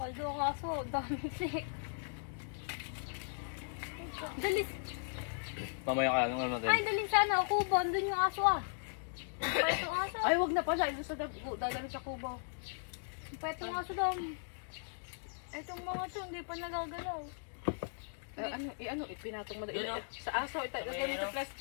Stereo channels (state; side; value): silent; right; digital silence